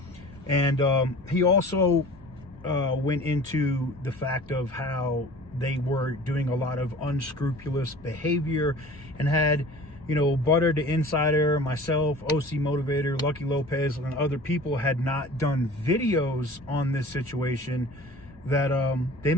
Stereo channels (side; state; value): both; normal; correlation 0.43